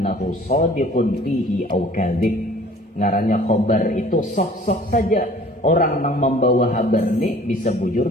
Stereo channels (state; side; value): normal; both; correlation 0.51